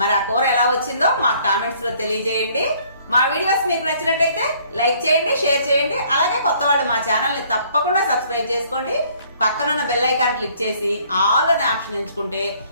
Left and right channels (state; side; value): inverted; both; correlation -0.60